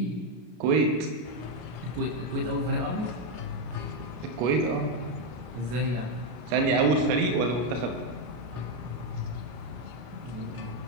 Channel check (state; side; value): late; left; 33 ms